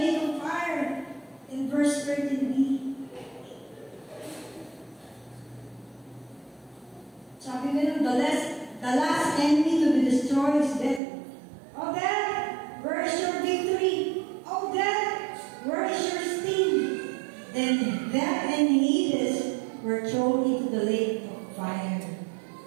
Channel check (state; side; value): drops out; left; at 11.0 s